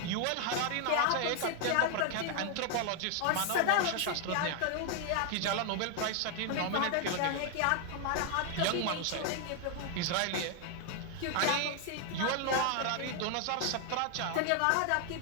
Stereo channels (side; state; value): both; different; correlation 0.00